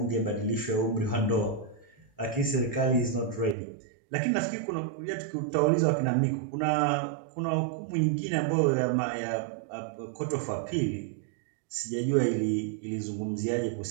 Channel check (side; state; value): left; drops out; at 3.6 s